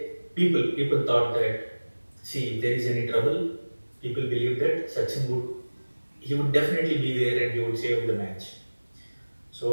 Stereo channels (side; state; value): both; inverted; correlation -1.00